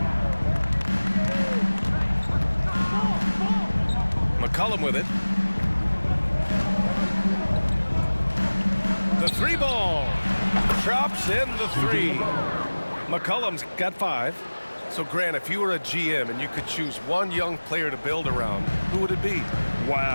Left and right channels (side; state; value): both; inverted; correlation -1.00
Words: McCollum with it. The three ball. Drops in the three. McCollum's got 5. So, Grant, if you were a GM and you could choose one young player to build around, who would it be?